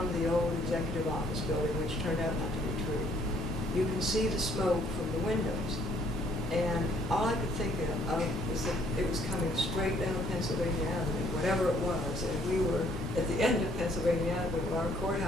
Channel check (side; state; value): both; normal; correlation 0.64